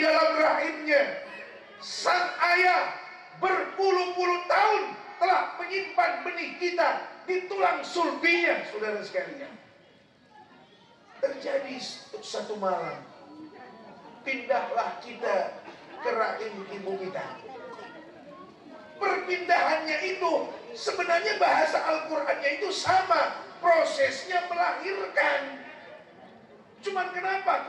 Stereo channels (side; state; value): both; identical; correlation 1.00